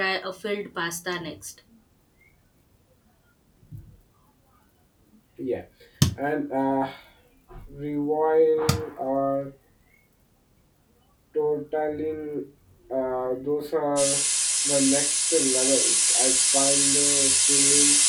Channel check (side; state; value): both; identical; correlation 1.00